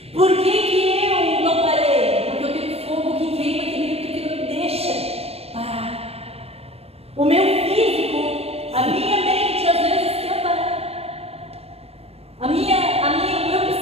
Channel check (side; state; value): left; late; 0.29 ms